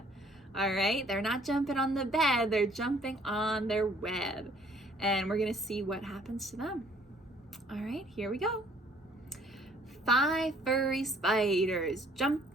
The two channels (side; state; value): both; normal; correlation 0.59